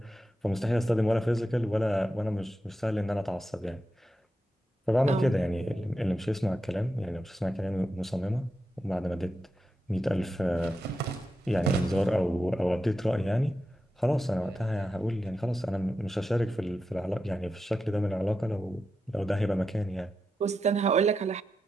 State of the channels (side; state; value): both; normal; correlation 0.89